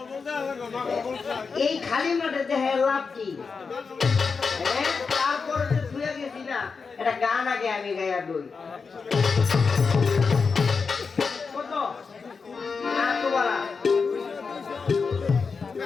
এই খালি মাঠে দেখে লাভ কি? তারপরে যে ধুয়ে গেছি না, এটা গান আগে আমি গাইয়া দই কত বলা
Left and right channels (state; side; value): quieter; right; 5.1 dB